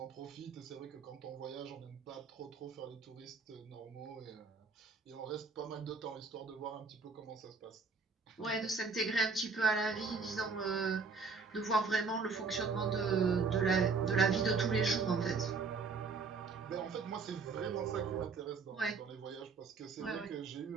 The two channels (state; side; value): quieter; left; 4.7 dB